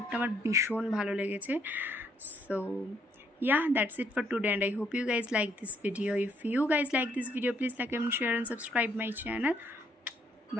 আমার ভীষণ ভালো লেগেছে। So yeah, that's it for today, and I hope you guys like this video. If you guys like this video, please like and share and subscribe my channel.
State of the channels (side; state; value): both; normal; correlation 0.70